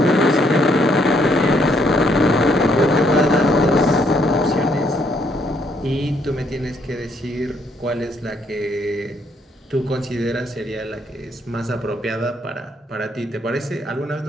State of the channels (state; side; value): normal; both; correlation 0.70